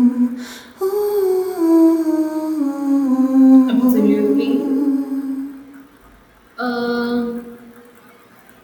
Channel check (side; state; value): both; identical; correlation 1.00